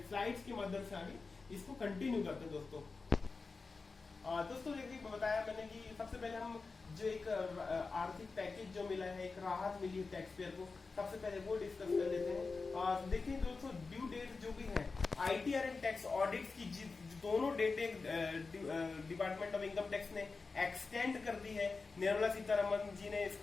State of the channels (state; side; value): quieter; right; 4.2 dB